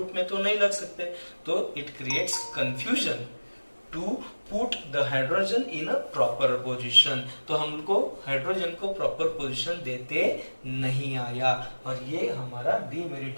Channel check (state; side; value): inverted; both; correlation -1.00